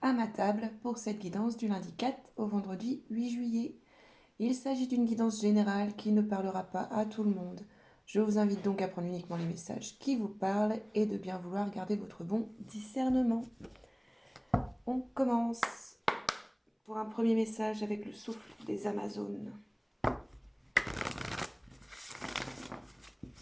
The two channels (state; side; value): identical; both; correlation 1.00